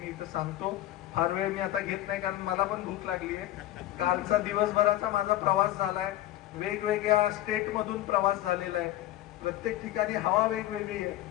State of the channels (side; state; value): right; quieter; 14.4 dB